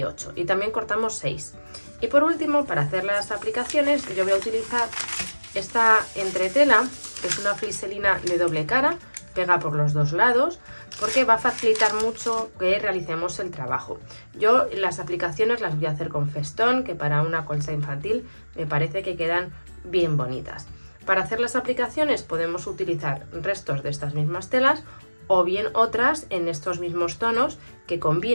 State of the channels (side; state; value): both; inverted; correlation -1.00